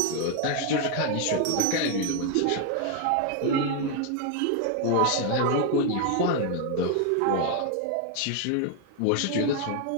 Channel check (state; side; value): different; both; correlation 0.01